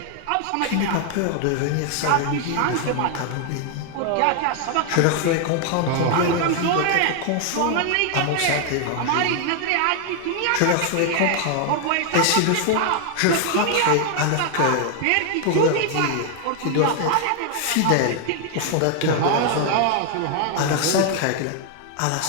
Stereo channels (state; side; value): different; both; correlation 0.00